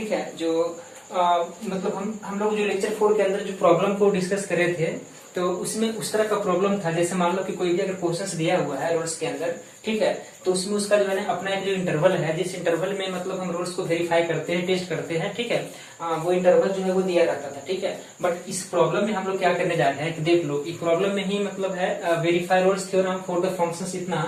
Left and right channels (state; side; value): identical; both; correlation 1.00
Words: है। जो मतलब हम लोग जो लेक्चर 4 के अंदर जो प्रॉब्लम को डिस्कस कर रहे थे तो उसमें उस तरह का प्रॉब्लम था, जैसे मान लो कि कोई भी अगर क्वेश्चंस दिया हुआ है रोल्स के अंदर, ठीक है, तो उसमें उसका जो है ना अपना एक जो इंटरवल है, जिस इंटरवल में मतलब हम रोल्स को वेरीफाई करते हैं, टेस्ट करते हैं, ठीक है, वो इंटरवल जो है वो दिया रहता था, ठीक है। बट इस प्रॉब्लम में हम लोग क्या करने जा रहे हैं कि देख लो, इस प्रॉब्लम में ही मतलब है verify Rolle's theorem for the functions इतना,